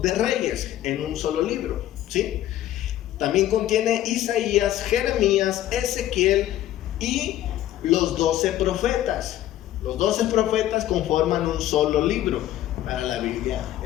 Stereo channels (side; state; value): right; quieter; 13.2 dB